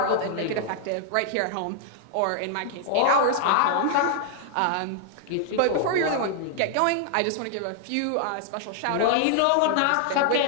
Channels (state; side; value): different; both; correlation 0.00